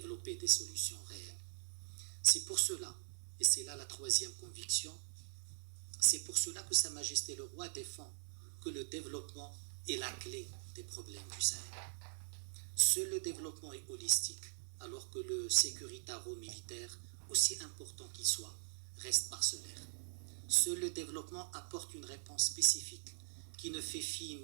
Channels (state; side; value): silent; left; 50 dB below the other